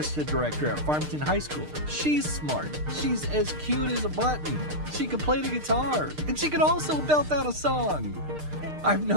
director at Farmington High School. She's smart, she's as cute as a button, she can play the guitar, and she can also belt out a song. I've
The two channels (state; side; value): late; left; 6.6 ms